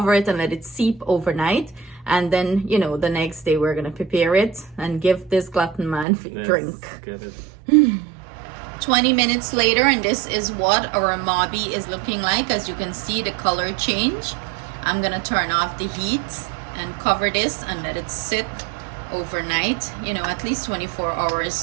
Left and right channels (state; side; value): drops out; left; at 6.1 s